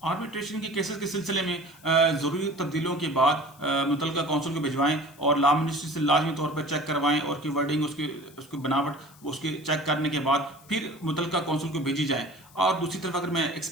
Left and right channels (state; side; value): noise; left; hiss, 25 dB below the sound